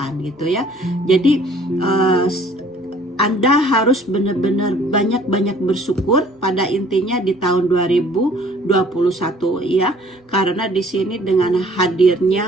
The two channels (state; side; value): normal; both; correlation 0.55